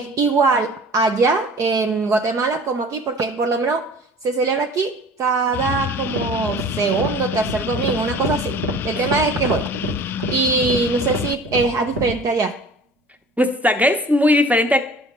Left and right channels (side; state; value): both; normal; correlation 0.44